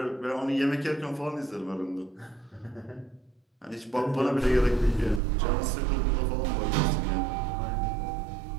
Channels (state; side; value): drops out; left; at 5.2 s